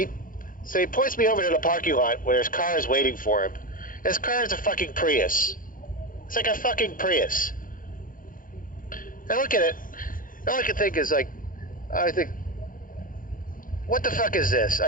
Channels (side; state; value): right; late; 0.40 ms